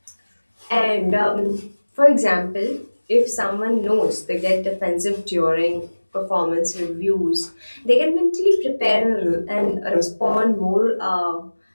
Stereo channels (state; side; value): inverted; both; correlation -1.00